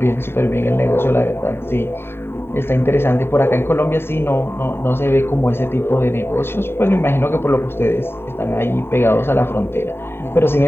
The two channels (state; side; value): late; right; 0.11 ms